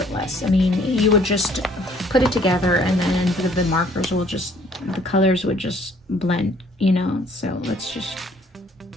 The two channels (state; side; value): normal; both; correlation 0.60